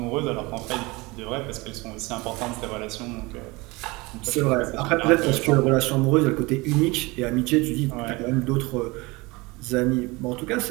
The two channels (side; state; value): left; quieter; 23.8 dB